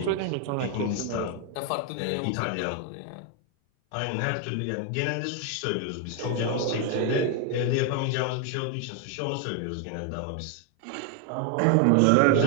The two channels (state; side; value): different; both; correlation 0.01